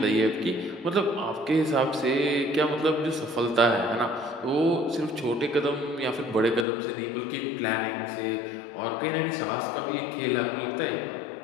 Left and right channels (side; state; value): right; drops out; at 6.7 s